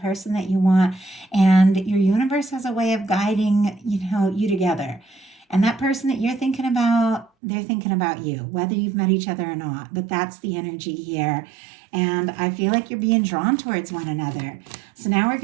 that you want, and your universe has a way of guiding, you together. And that person that you're thinking about, they're thinking about you, whether you've met each other or not. But that's the energy here. And I feel like you're being drawn towards one another. So now we're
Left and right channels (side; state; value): left; drops out; at 7.3 s